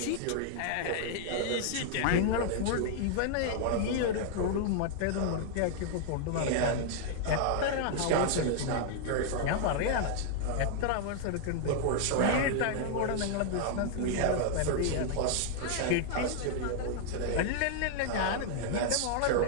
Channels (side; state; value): both; different; correlation -0.01